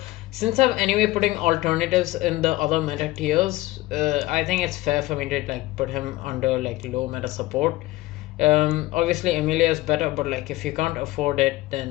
Since I'm anyway putting alternatives in the other meta tiers, I think it's fair for me to like put him under like low meta support. Obviously Emilia is better, but like if you can't afford it,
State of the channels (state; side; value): quieter; right; 18.5 dB